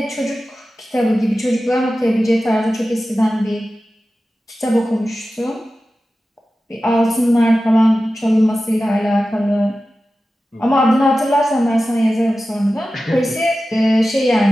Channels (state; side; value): normal; both; correlation 0.94